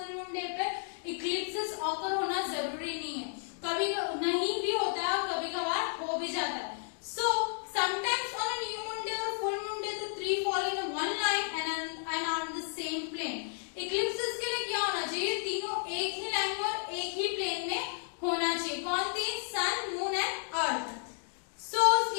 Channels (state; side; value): silent; right; 56 dB below the other